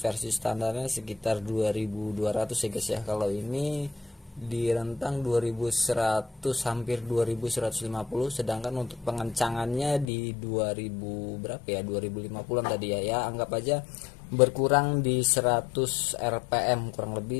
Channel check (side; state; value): right; drops out; at 10.1 s